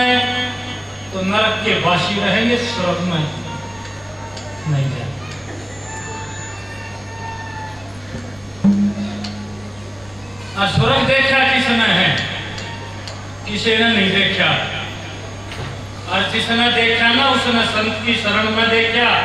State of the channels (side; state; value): right; noise; rumble, 25 dB below the sound